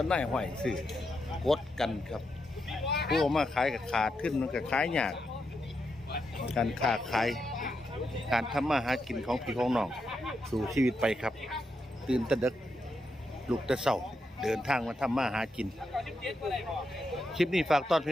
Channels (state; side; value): normal; both; correlation 0.84